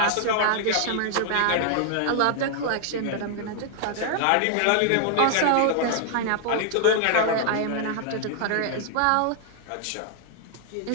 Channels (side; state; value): both; different; correlation 0.00